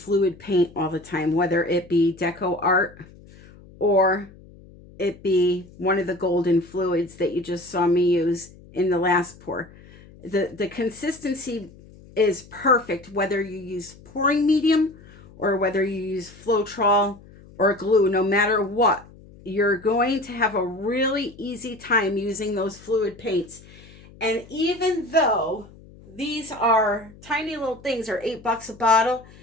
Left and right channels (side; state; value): left; noise; hum, 22 dB below the sound